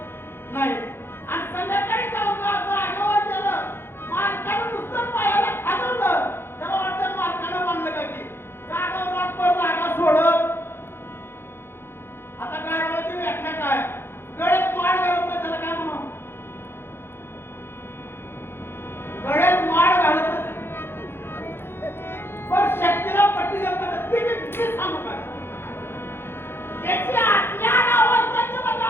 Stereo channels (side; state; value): right; late; 0.11 ms